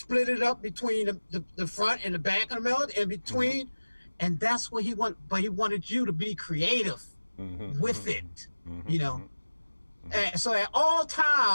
it up between the front and the back of the melody and between. And that's what he wanted. But he wanted you to be creative with it, you know? And so at all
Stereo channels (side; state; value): both; inverted; correlation -1.00